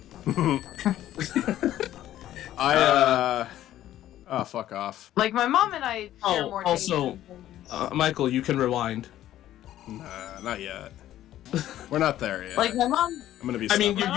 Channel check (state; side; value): quieter; right; 13.0 dB